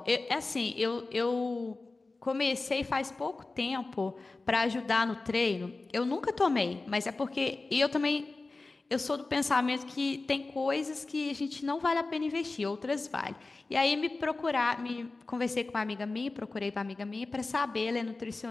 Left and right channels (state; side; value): quieter; right; 3.5 dB